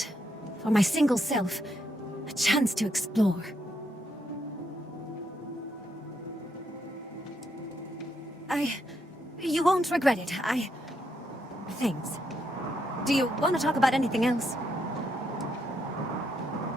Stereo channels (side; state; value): both; normal; correlation 0.78